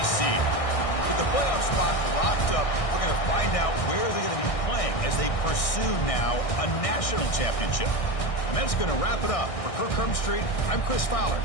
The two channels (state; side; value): late; right; 1.6 ms